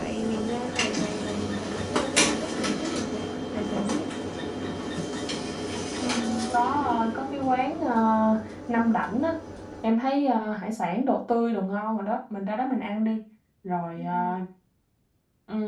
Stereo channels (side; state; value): both; identical; correlation 1.00